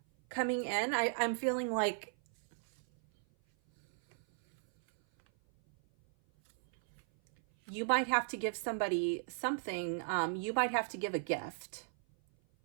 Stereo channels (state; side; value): silent; left; 54 dB below the other